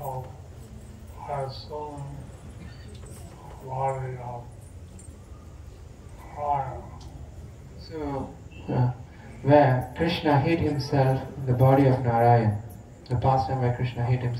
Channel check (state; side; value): identical; both; correlation 1.00